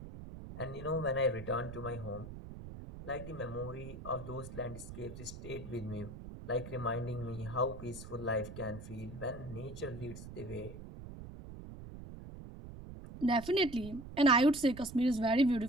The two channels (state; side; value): noise; right; rumble, 12 dB below the sound